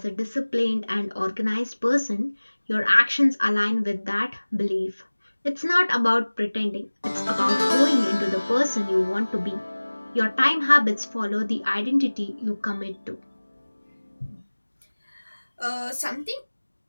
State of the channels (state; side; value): inverted; both; correlation -1.00